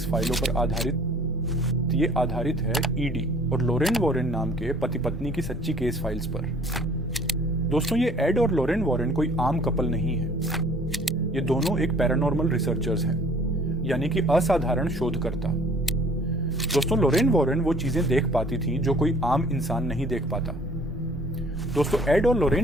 फाइलों पर आधारित है ईडी और लोरेन वॉरेन नाम के पति पत्नी की सच्ची केस फाइल्स पर। दोस्तों, ये एड और लोरेन वॉरेन कोई आम कपल नहीं है। ये दोनों एक पैरानॉर्मल रिसर्चर्स हैं, यानी कि असाधारण शोधकर्ता। दोस्तों, लोरेन वॉरेन वो चीजें देख पाती थी जो कोई आम इंसान नहीं देख पाता। दोस्तों, एड और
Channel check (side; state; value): both; normal; correlation 0.54